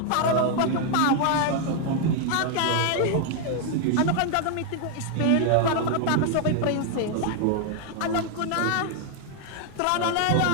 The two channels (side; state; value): both; different; correlation 0.00